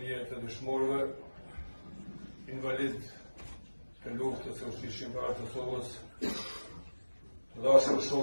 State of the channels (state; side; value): inverted; both; correlation -1.00